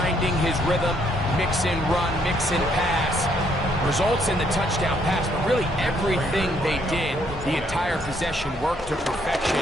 his rhythm, mix and run, mix and pass. Results in the touchdown pass, but really everything they did, the entire possession worked to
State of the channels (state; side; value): normal; both; correlation 0.70